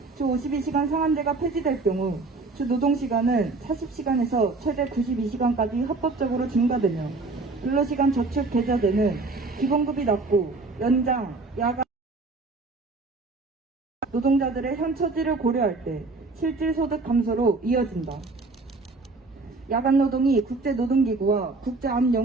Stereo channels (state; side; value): quieter; left; 3.6 dB